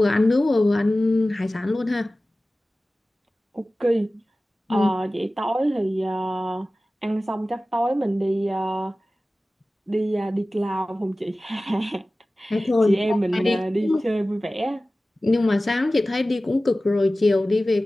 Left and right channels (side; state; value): both; normal; correlation 0.96